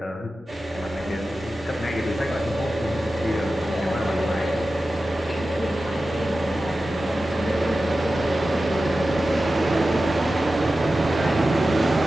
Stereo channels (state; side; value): normal; both; correlation 0.94